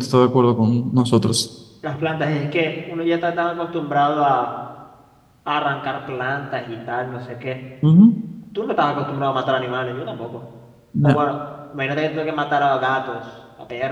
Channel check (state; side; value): identical; both; correlation 1.00